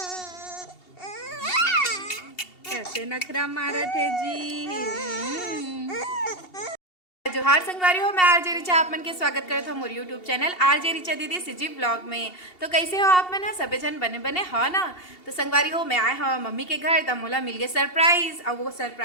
कैसे नखरा मारा थे जी। जोहार संगवारी हो, मैं आरजे रिचा आप मन के स्वागत करत हूँ मोर यूट्यूब चैनल आरजे रिचा दीदी सिजी ब्लॉग में। तो कैसे हो आप मन? सबे जन बने बने हो ना। तो संगवारी हो, मैं आए हो मम्मी के घर, तब मोला मिल गए सरप्राइज। और वो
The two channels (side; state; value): right; late; 2.7 ms